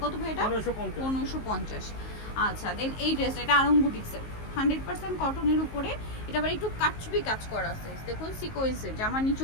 কত ভাই এটা? 1550। আচ্ছা, দেন এই ড্রেসটা, এটা আরং বুটিক্সের, 100% কটনের উপরে। এটা আবার একটু কারচুপি কাজ করা আছে, দেখুন সিকোয়েন্সের, জামার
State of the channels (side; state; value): right; late; 19 ms